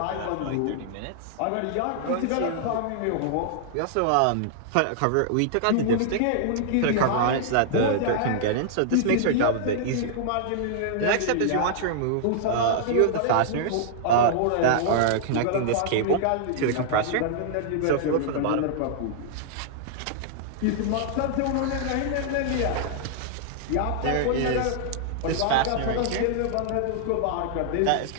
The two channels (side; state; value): both; different; correlation -0.01